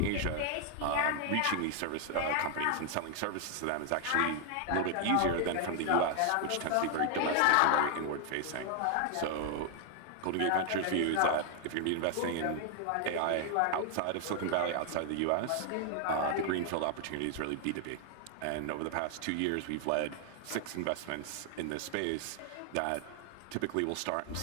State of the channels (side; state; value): both; different; correlation 0.00